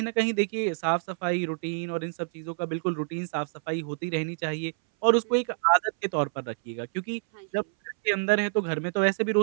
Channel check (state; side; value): silent; left; 60 dB below the other